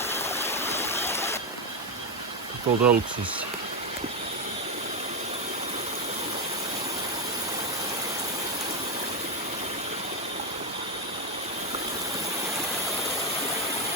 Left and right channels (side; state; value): both; normal; correlation 0.06